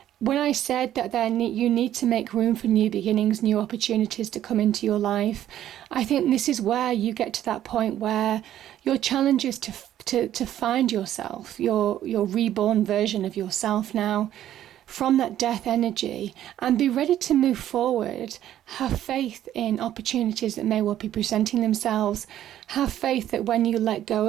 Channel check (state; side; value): quieter; left; 11.9 dB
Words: When I said that you need to make room for new beginnings, new opportunities to come into your life, I think this is where you get to that point where your challenge is to find yourself, your reborn version of yourself now, from that death energy, and be ready to move forward. Have faith in opportunities that may well be presenting themselves. Have faith that when you let go